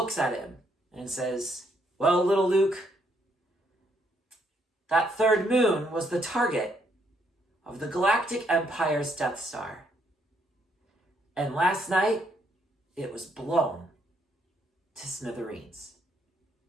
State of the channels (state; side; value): normal; both; correlation 0.73